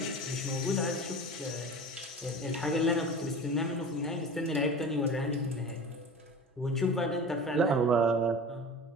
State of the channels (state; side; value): normal; both; correlation 0.35